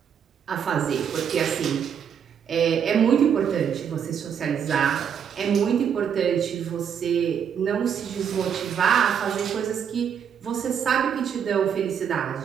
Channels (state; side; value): quieter; left; 7.9 dB